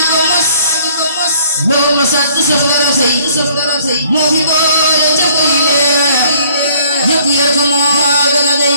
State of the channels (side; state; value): both; inverted; correlation -0.58